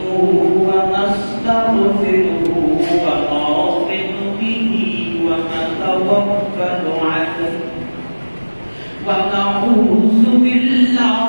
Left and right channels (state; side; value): inverted; both; correlation -1.00